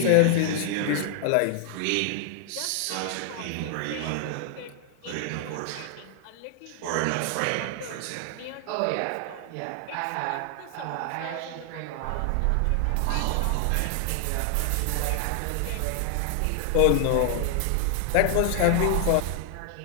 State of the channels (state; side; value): different; both; correlation 0.00